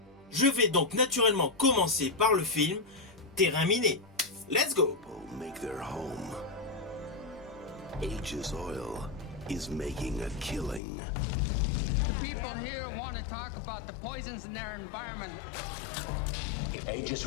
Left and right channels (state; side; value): drops out; right; at 10.8 s